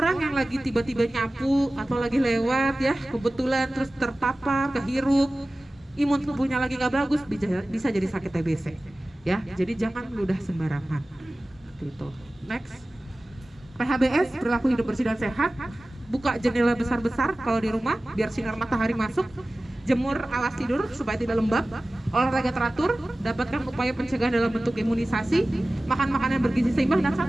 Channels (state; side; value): normal; both; correlation 0.97